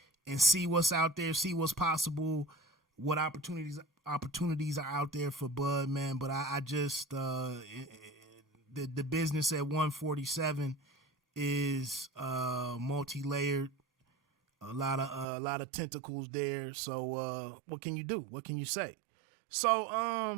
and see what's out there, see what's possible, what opportunities are out there for Bud, man. But I just the business at 147 is multi-layered. a lot of tentacles there. So what can you do? What can you say? So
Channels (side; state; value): left; drops out; at 15.2 s